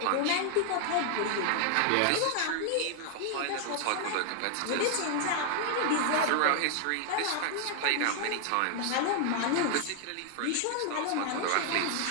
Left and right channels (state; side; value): different; both; correlation 0.00